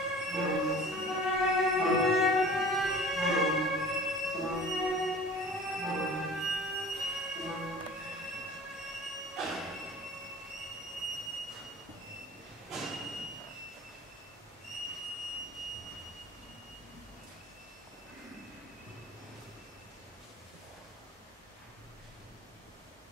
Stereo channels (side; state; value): both; normal; correlation 0.43